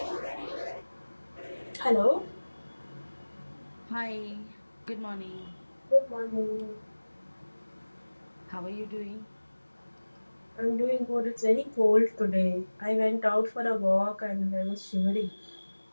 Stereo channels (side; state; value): both; inverted; correlation -1.00